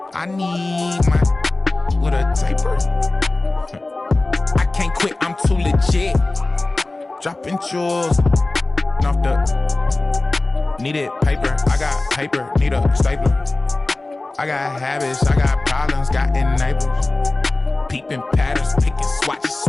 I need my with a taper. I can't quit, I'm too legit. Dropping jewels off the needed paper. I got paper, need a stapler. I got habits, I got problems, got enablers. Peeping patterns, picking, swatch,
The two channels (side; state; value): right; quieter; 3.0 dB